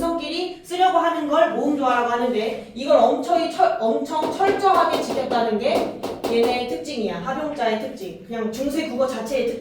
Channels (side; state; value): both; identical; correlation 1.00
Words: 쓰려고 하는 걸 모음조화라고 하는데 이걸 엄청 철저하게 지켰다는 게 얘네의 특징이야. 합용자의 특징. 그냥 중세 국어 자체의